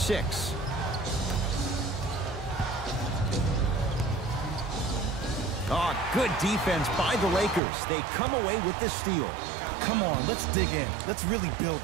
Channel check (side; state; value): left; drops out; at 7.6 s